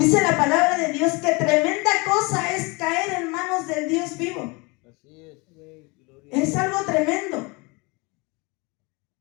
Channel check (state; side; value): quieter; right; 27.4 dB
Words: la palabra de Dios que tremenda cosa es caer en manos del Dios vivo. Es algo tremendo.